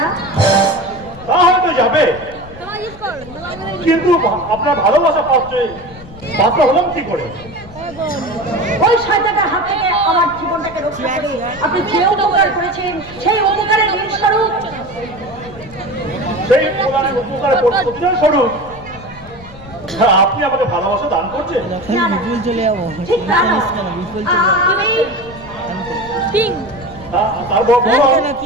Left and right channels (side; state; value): left; noise; rumble, 19 dB below the sound